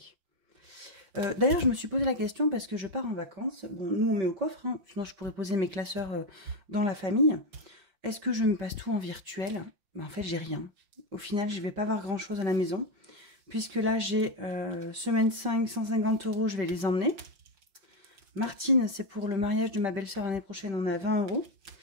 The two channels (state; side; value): late; left; 5.1 ms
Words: D'ailleurs, je me suis posé la question parce que je pars en vacances. Bon, nous, on met au coffre, hein, sinon je pourrais poser mes classeurs dans la famille. Est-ce que je me passe tout en virtuel? Ben, en fait, j'ai rien. Au final, je ne vais pas avoir grand-chose à la maison. Puisque là, j'ai semaine 5, 150 €, je vais les emmener. Martine, c'est pour le mariage de ma belle-sœur l'année prochaine, on a 20 €.